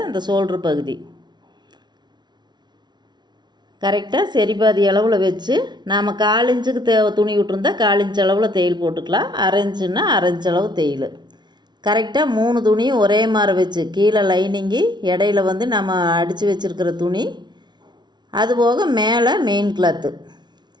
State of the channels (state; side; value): late; left; 0.20 ms